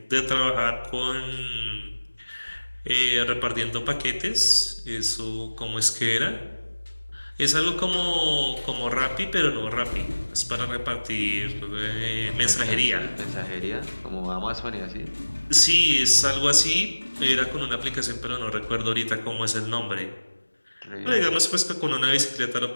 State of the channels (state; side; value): inverted; both; correlation -1.00